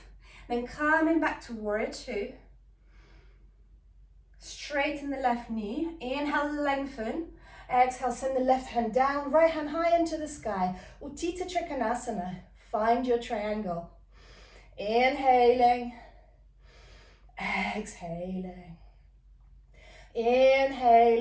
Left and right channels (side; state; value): both; identical; correlation 1.00